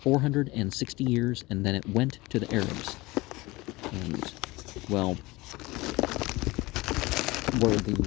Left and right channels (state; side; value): quieter; right; 21.5 dB